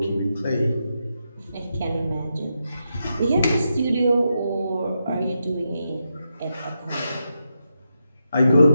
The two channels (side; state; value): both; inverted; correlation -0.85